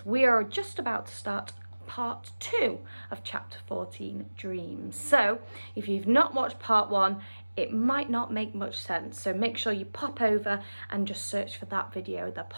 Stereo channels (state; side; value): inverted; both; correlation -1.00